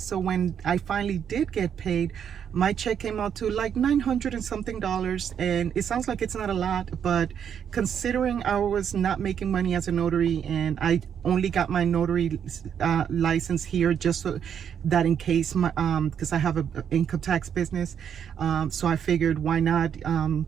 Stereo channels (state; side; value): quieter; left; 8.3 dB